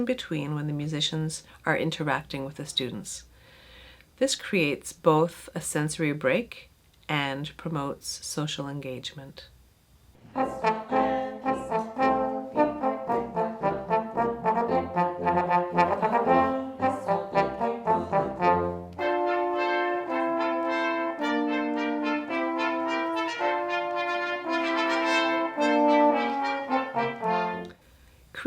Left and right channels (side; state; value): both; identical; correlation 1.00